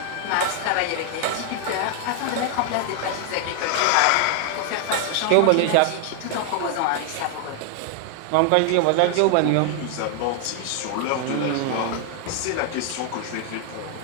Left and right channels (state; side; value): different; both; correlation 0.00